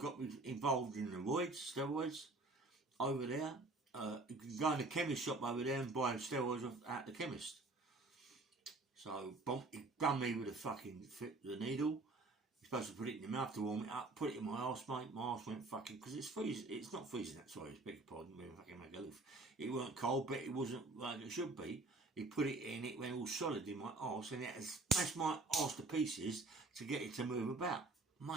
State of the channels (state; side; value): quieter; left; 3.2 dB